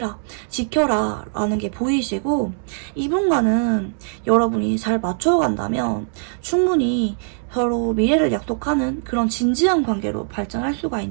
지켜라 라는 게 보이시고, 이분과는 여러분이 잘 맞춰간다면 충분히 서로 미래를 약속하는 그런 진지한 관계로 발전할 수가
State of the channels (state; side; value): silent; left; digital silence